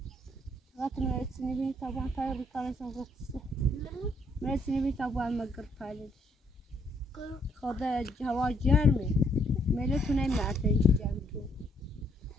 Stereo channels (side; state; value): both; normal; correlation 0.69